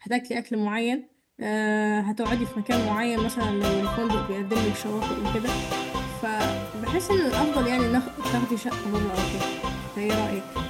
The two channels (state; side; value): identical; both; correlation 1.00